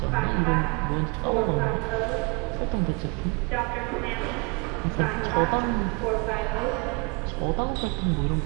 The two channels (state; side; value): quieter; left; 31.3 dB